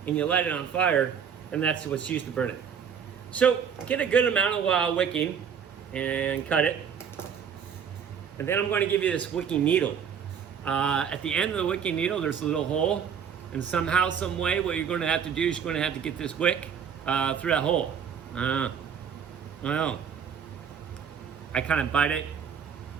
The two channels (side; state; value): left; quieter; 7.4 dB